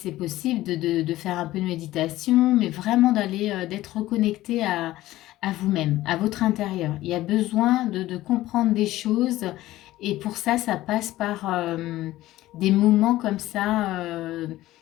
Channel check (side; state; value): right; quieter; 16.0 dB